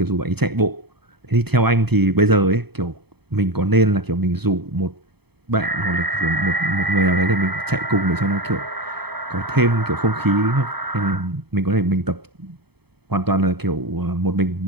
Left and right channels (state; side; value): late; left; 0.97 ms